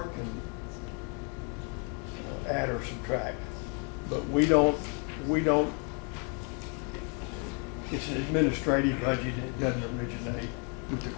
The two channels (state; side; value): quieter; right; 35.6 dB